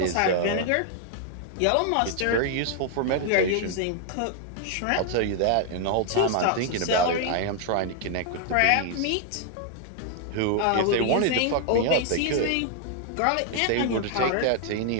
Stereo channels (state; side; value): different; both; correlation 0.00